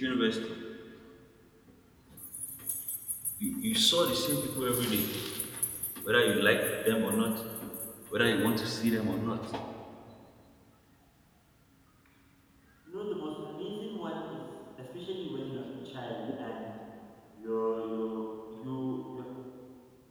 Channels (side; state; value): both; identical; correlation 1.00